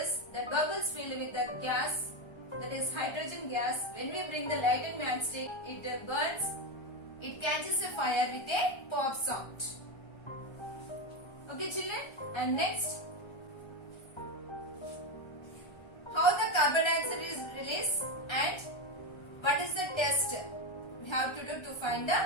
That bubbles filled with the gas, that is hydrogen gas. When we bring the lightened matchstick, it burns. It catches a fire with a pop sound. Okay children, and next, how the carbon dioxide is released and what is the test we have to do to find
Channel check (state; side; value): late; right; 1.3 ms